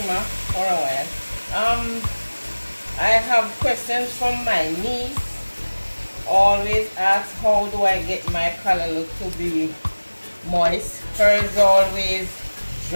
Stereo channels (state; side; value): inverted; both; correlation -1.00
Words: for a while. I have questions from my niece. Always ask, how do I get my callaloo to be moist? Hers always